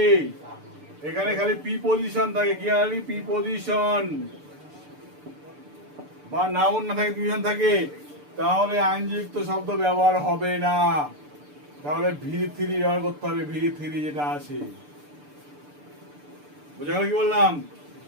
এখানে খালি প্রিপজিশন থাকে, কি খালি প্রিপজিশন বা নাউন না থাকে, প্রিপজিশন থাকে, তাহলে আইনযুক্ত শব্দ ব্যবহার হবে না। তাহলে V3 ব্যবহার করতে হবে, V3 যেটা আছে। বোঝা গেল কি বললাম?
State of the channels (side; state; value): left; late; 6.8 ms